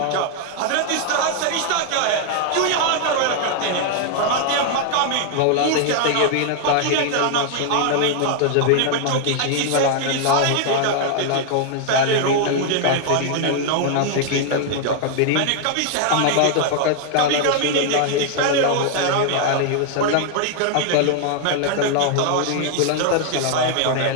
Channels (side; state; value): both; different; correlation 0.00